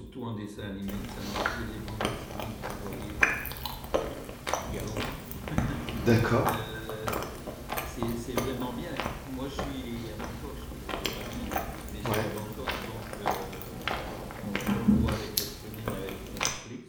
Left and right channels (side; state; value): both; identical; correlation 1.00